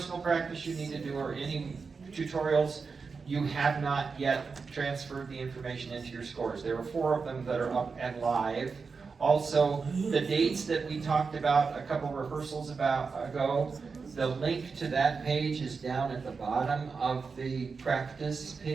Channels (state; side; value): quieter; left; 4.9 dB